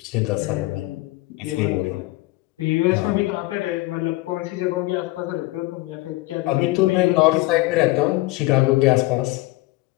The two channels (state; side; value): quieter; right; 20.3 dB